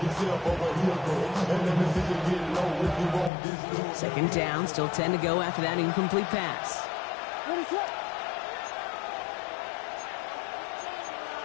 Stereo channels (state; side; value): drops out; right; at 3.3 s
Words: Second down, still 10 to go after that incomplete pass.